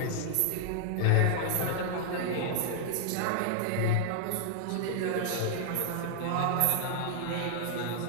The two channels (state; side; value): different; both; correlation -0.01